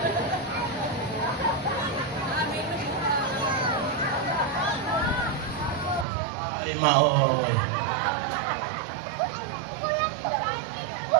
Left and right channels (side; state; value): left; drops out; at 6.1 s